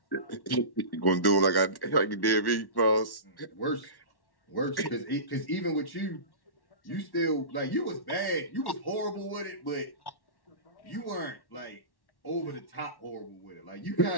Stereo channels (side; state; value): right; late; 1.1 ms